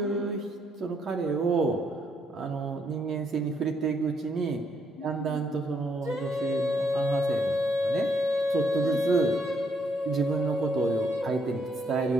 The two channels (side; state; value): both; normal; correlation 0.73